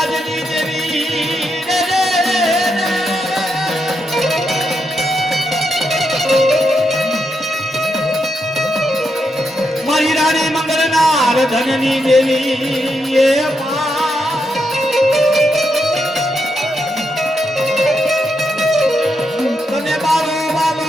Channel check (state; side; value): normal; both; correlation 0.82